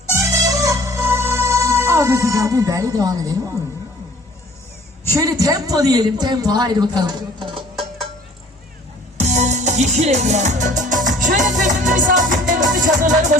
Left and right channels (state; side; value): normal; both; correlation 0.52